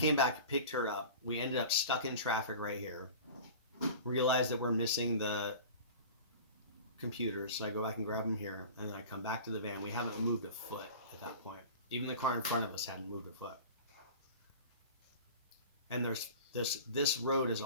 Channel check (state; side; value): inverted; both; correlation -0.37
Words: back, picked her up. We ended up stuck in traffic right here. Realized that we're missing the computers, so I go back and grab them here, and then I come back to the van. We haven't moved a foot at that point. Even the car in front of us hadn't moved a foot. And there's this road is